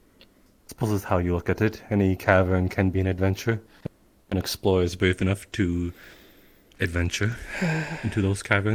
Suppose it's how you look at it. Any cavern can be an adventure. An explorer is brave enough to adventure into those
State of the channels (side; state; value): both; identical; correlation 1.00